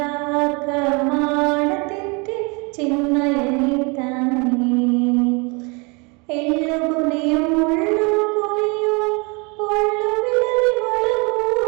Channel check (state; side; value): quieter; left; 30.3 dB